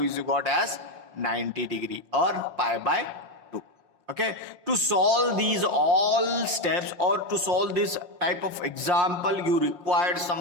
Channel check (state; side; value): late; left; 5.6 ms